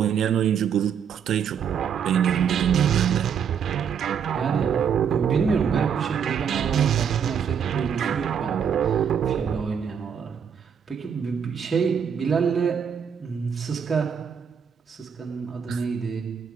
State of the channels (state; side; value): quieter; left; 7.5 dB